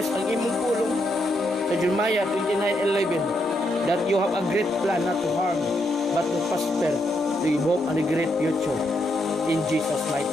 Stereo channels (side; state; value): both; normal; correlation 0.79